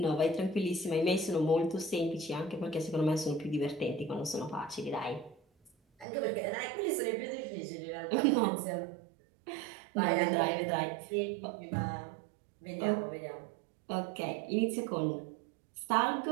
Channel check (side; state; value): left; drops out; at 6.1 s